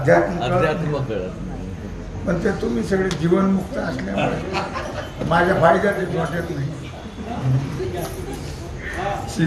कळत नाही. पण ते तुम्ही सगळे जीवनमुक्त असल्यामुळे माझ्या फायद्यात वाटत नाही.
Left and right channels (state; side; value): identical; both; correlation 1.00